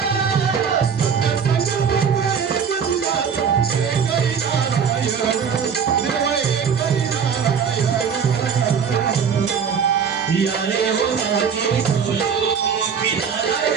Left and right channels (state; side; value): quieter; left; 6.8 dB